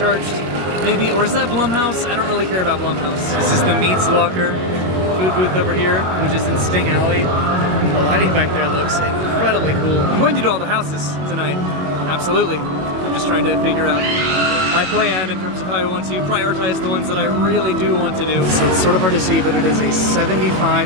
maybe, or is that Blumhouse? I don't really care about Blumhouse. This is the Meats Locker food booth over here, which is in Sting Alley. The lighting back there looks incredibly cool. I'm going to do all the houses tonight, absolutely. I'm just trying to figure out my plan in terms of how I want to prioritize the ones that I really do want to do. So it's sort of hard to see, but it is a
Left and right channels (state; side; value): late; left; 22 ms